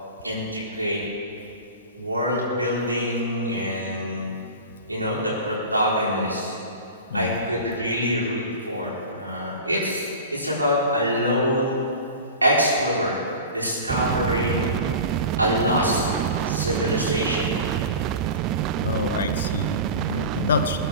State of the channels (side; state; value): both; inverted; correlation -0.33